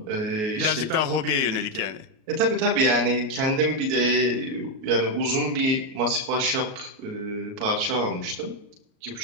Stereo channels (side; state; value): left; late; 38 ms